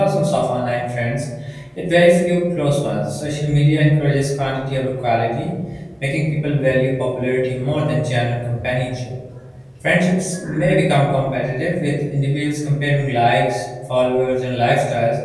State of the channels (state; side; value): identical; both; correlation 1.00